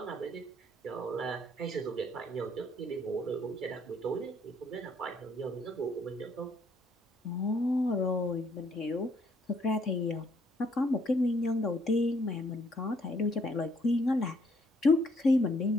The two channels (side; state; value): both; normal; correlation 0.67